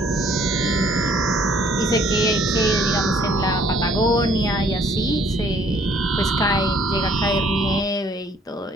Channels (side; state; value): both; normal; correlation 0.60